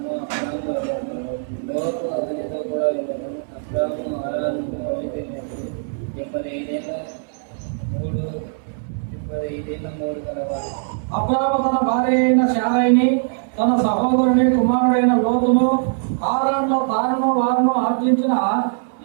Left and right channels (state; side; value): silent; left; 61 dB below the other